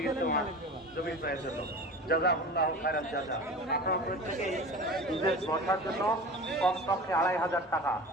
ইজতেমা জমির ব্যয়ের জন্য। জাযাকুল্লাহু খায়রাল জাযা। আপনারা প্রত্যেকেই ঈদের বসার জন্য কমপক্ষে 2,500 টাকা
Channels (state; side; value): normal; both; correlation 0.35